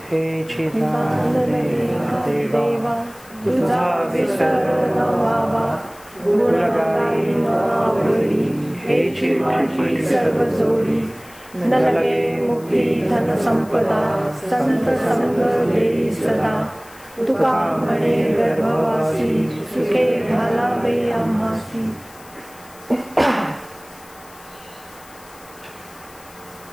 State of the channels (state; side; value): noise; left; hiss, 23 dB below the sound